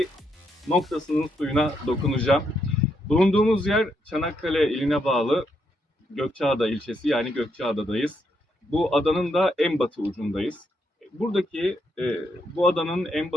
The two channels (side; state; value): both; normal; correlation 0.78